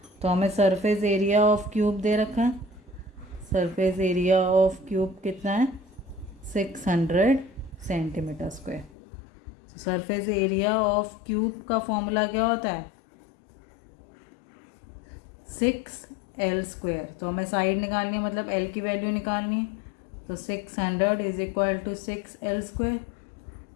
तो हमें सरफेस एरिया ऑफ क्यूब दे रखा है। सरफेस एरिया ऑफ क्यूब कितना है 600 centimetre square. Surface area of cube का फॉर्मूला क्या होता है 6 एल स्क्वेयर। तो हमें साइड निकालनी है, मतलब एल की वैल्यू निकालनी है। तो 600 is equal to 6 L square.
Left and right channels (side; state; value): right; drops out; at 8.9 s